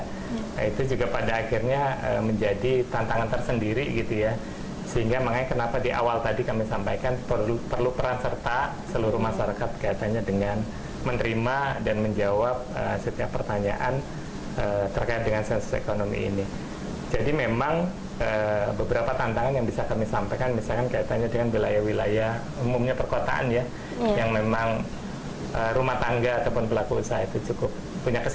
itu juga pada akhirnya menjadi tantangan tersendiri gitu ya. Sehingga makanya kenapa di awal tadi kami sampaikan perlu peran serta seluruh masyarakat kaitannya dengan menerima dan menjawab setiap pertanyaan terkait dengan sensus ekonomi ini. Jadi memang beberapa tantangan yang bisa kami sampaikan, misalkan kaitannya dengan wilayah-wilayah umumnya perkotaan ya, yang memang rumah tangga ataupun pelaku usaha itu cukup punya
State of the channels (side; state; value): both; identical; correlation 1.00